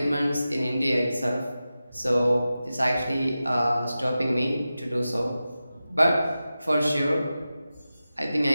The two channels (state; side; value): inverted; both; correlation -0.94